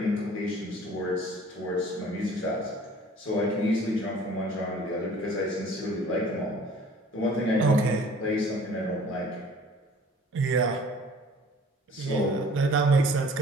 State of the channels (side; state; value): both; normal; correlation 0.50